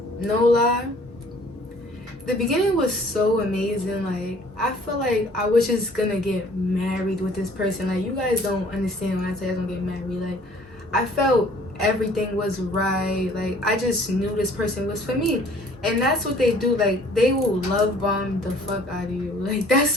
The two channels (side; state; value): both; normal; correlation 0.55